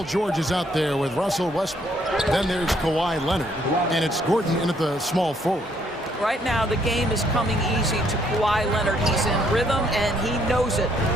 George is out there with Russell Westbrook. Then there's Kawhi Leonard, and it's Gordon in at the small forward. Right now, the game is coming easy to Kawhi Leonard. He's in rhythm, and he knows it.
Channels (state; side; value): normal; both; correlation 0.69